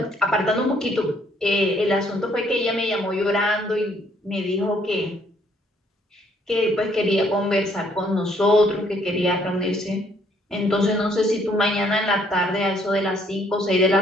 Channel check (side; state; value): both; normal; correlation 0.66